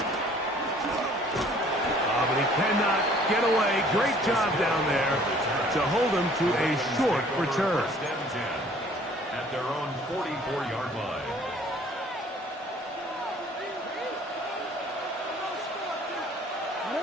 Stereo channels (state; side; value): normal; both; correlation 0.55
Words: But he cannot get away. Great job down there to hold him to a short return. At their own 44-yard line.